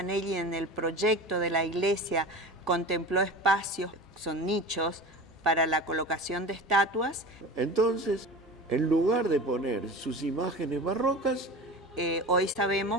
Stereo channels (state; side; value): normal; both; correlation 0.33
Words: en el proyecto de la iglesia contempló espacios, son nichos, para la colocación de estatuas. Entonces, en lugar de poner sus imágenes barrocas, hoy